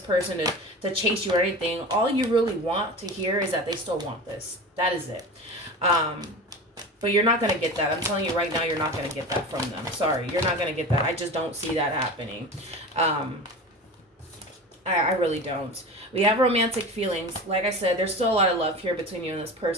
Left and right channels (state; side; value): normal; both; correlation 0.31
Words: to chase you or anything. All you really want to hear is that they still want this. That is it. But you're not going to get that. I'm telling you right now, you're not going to get that from them. Sorry, you're not going to get that. I just don't see that happening. I really don't. We have romantic feelings. Like I said, there's still a lot of love here between you and this